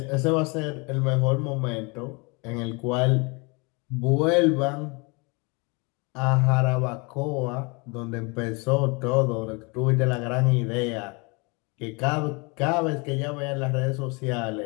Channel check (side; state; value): right; quieter; 29.7 dB